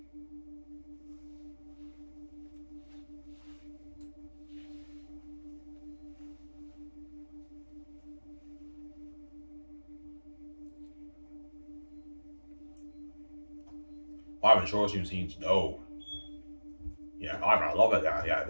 I haven't short scenes. No. Yeah, I love it. Yeah,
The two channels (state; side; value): inverted; both; correlation -1.00